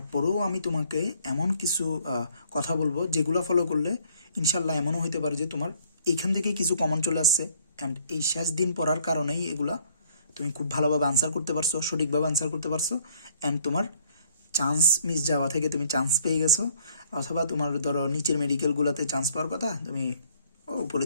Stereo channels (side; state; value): both; inverted; correlation -0.61